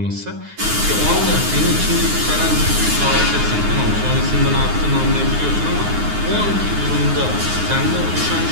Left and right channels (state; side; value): late; left; 9.6 ms